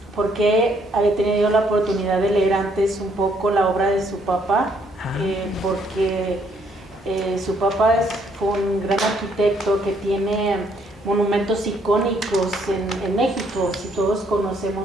porque había tenido la oportunidad de leer antes un poco la obra de su papá, porque su papá fue un gran arquitecto que tiene monumentos icónicos en México. Si todos conocemos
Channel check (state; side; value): normal; both; correlation 0.69